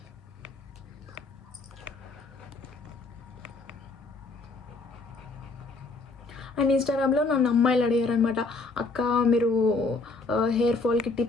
అండ్ ఇన్స్టాగ్రామ్లో నన్ను అమ్మాయిలు అడిగారు అనమాట, అక్క మీరు హెయిర్ ఫాల్కి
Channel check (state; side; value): quieter; right; 3.7 dB